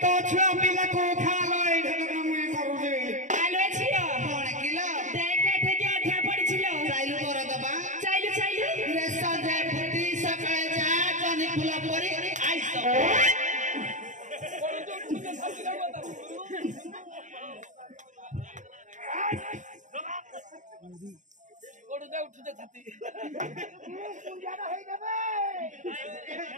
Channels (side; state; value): left; late; 0.36 ms